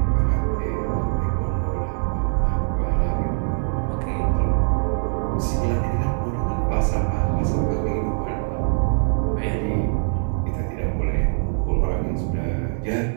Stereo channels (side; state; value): left; silent; digital silence